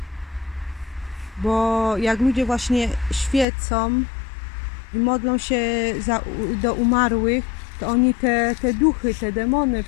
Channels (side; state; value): right; drops out; at 3.5 s